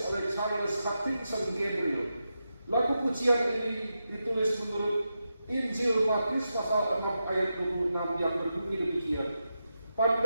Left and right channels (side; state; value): both; inverted; correlation -0.88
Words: oleh Charles Hutchinson Gabriel. Lagu pujian ini ditulis menurut Injil Matius pasal 6 ayat 26 yang berbunyi demikian.